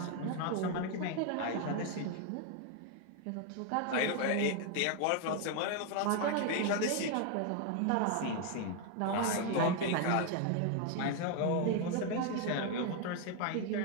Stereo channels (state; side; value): different; both; correlation 0.01